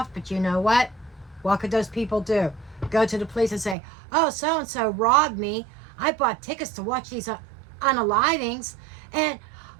but you know what? What could those people do? Go to the police and say, oh, so-and-so robbed me. I bought tickets to watch these unalivings, and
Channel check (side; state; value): left; drops out; at 3.8 s